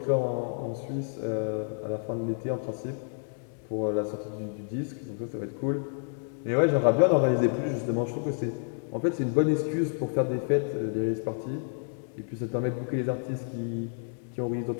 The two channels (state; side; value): silent; right; 58 dB below the other